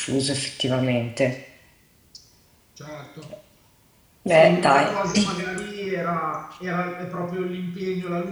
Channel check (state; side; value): identical; both; correlation 1.00